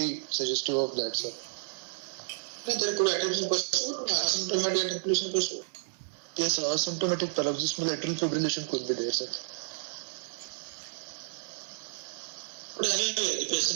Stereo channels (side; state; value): left; silent; digital silence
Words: suggestive of that, sir. There could be atrial pursuit, asymptomatic atrial pursuit. Yes, sir. Asymptomatic paroxysmal atrial fibrillation could be there, sir. But anyway, the